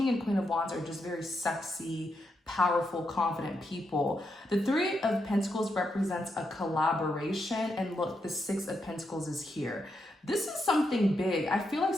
and Queen of Wands are just very sexy, powerful, confident people. The Three of Pentacles represents a collaboration, and look, the Six of Pentacles is here. This is something big. I feel like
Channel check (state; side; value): normal; both; correlation 0.83